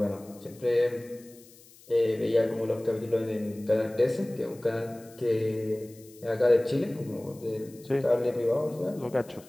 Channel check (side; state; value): left; noise; hiss, 24 dB below the sound